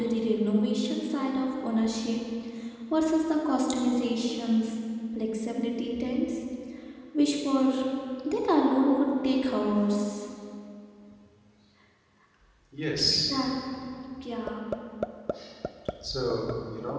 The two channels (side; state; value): both; identical; correlation 1.00